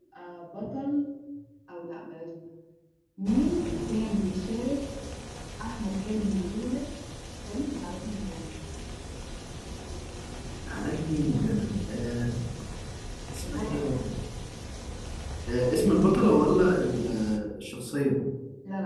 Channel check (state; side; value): identical; both; correlation 1.00